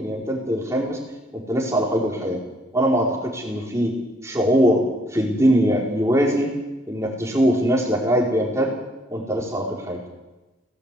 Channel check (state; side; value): normal; both; correlation 0.66